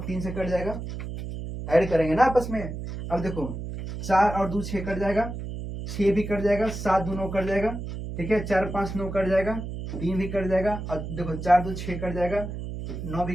3 से कट जाएगा, ऐड करेंगे ना आपस में। अब देखो 4 और 2 6 कट जाएगा, 6 भी कट जाएगा, 7 2 9 कट जाएगा, ठीक है, 4 5 9 कट जाएगा, 3 भी कट जाएगा, और देखो 4 2 6 कट जाएगा, 9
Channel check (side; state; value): right; noise; hum, 7 dB below the sound